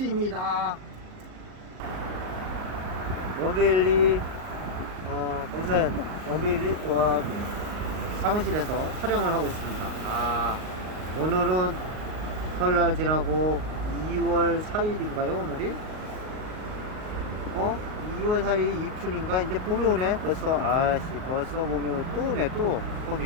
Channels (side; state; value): left; late; 38 ms